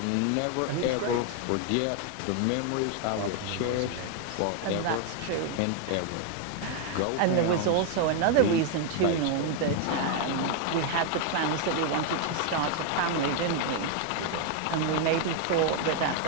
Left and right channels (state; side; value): different; both; correlation 0.01